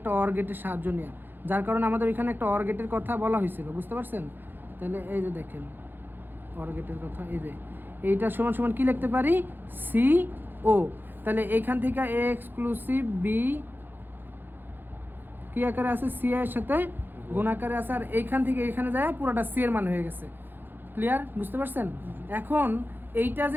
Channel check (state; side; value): late; left; 0.095 ms